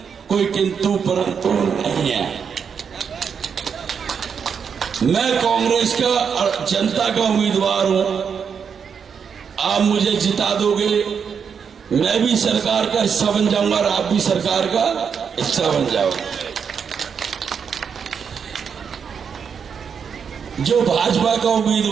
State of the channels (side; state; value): left; quieter; 6.7 dB